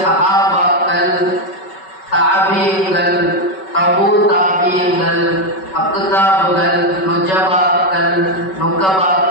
சஹாபாக்கள் தாபியங்கள் தபூ தாபியங்கள் அக்தாபுகள் நுஜபாக்கள்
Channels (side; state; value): right; late; 5.3 ms